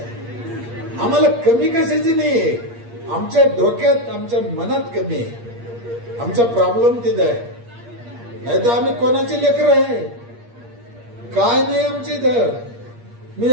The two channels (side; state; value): left; late; 8.5 ms